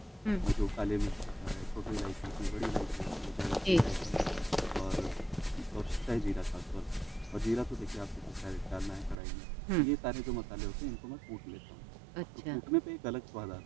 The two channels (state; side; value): drops out; left; at 9.2 s